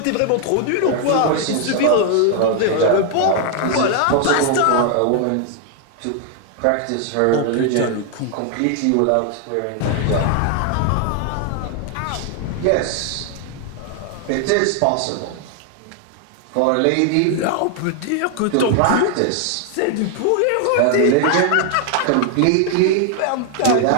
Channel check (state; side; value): different; both; correlation 0.00